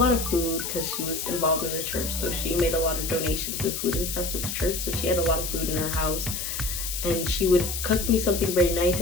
of food, because she was involved in the church. So she made a lot of donations of food and stuff to the church. So she had a lot of food in her house, and she would cook me something very nice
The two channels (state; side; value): noise; left; hiss, 4 dB below the sound